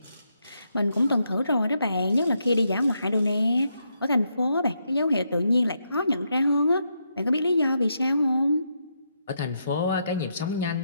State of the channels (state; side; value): inverted; both; correlation -0.80